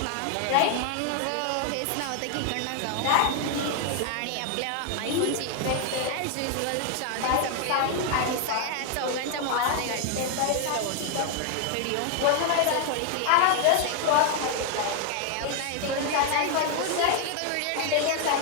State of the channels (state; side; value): different; both; correlation 0.00